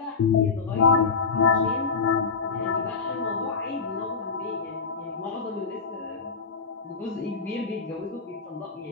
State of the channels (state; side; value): quieter; right; 5.0 dB